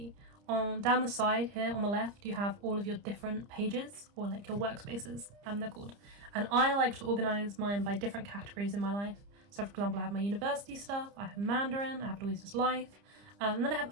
Down the side here on the left, you have all of your different pages, or your workspaces, they're called. And I like to organize mine by different categories in my life. So for example, I have my university stuff, I have Mandarin, I have Louisa's life, and then I have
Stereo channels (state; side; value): late; left; 30 ms